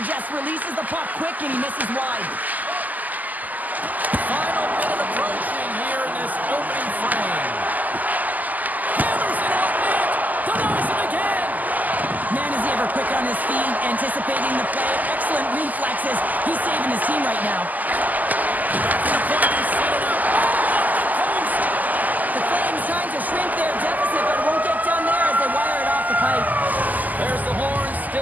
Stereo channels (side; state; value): left; late; 0.081 ms